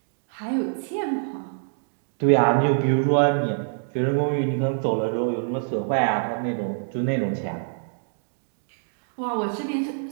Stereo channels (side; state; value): left; silent; digital silence